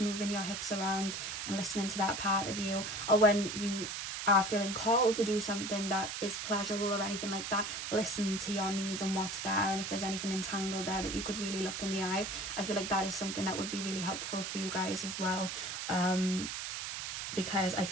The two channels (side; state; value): right; noise; hiss, 5 dB below the sound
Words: your hips around and listening to that part of you. Or when you are feeling called to do something that is pleasurable or anything like that, listen to your needs and what's there, and if there's anything entangled there that you could really look in the eye. I feel like that is something that would be really helpful for you guys as well, because I